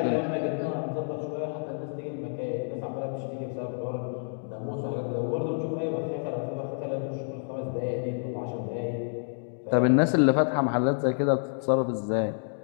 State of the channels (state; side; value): silent; right; digital silence